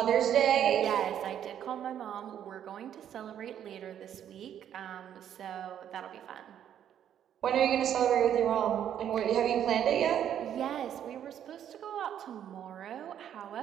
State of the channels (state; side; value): quieter; left; 9.9 dB